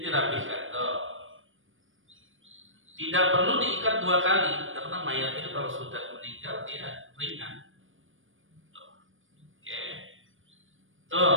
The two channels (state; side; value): late; left; 0.58 ms